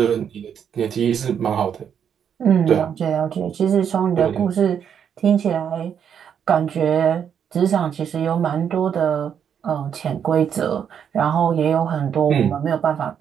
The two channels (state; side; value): quieter; left; 8.1 dB